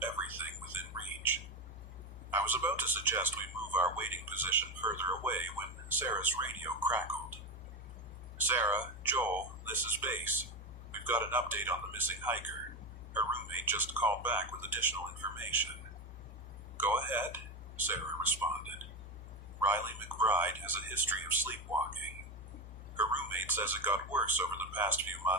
everything within reach. I was about to suggest we move our waiting position further away when Sarah's radio crackled. Sarah, Joel, this is Base. We've got an update on the missing hiker. Her roommate just called back with additional information. Go ahead, Sarah responded. Riley McBride has a history of sleepwalking. Her roommate says it got worse over the past few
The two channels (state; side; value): normal; both; correlation 0.18